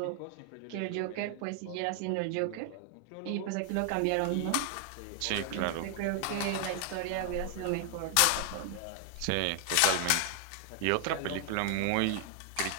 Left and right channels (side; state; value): both; different; correlation 0.00